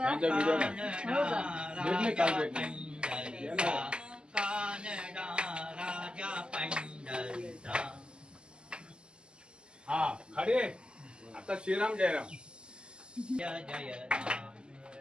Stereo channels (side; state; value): left; late; 0.049 ms